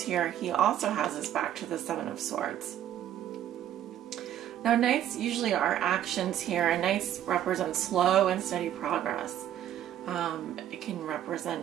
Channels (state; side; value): quieter; left; 11.2 dB